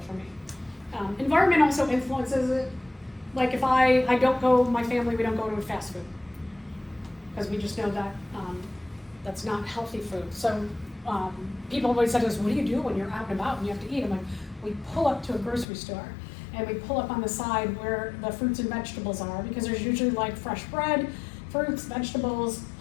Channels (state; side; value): drops out; right; at 15.7 s